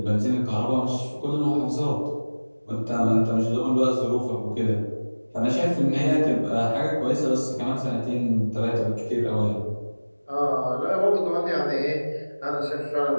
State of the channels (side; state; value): both; inverted; correlation -1.00